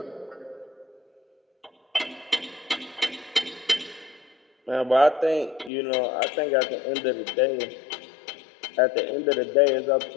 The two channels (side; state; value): right; drops out; at 5.7 s